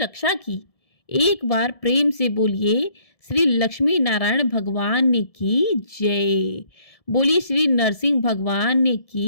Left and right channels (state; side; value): late; right; 1.7 ms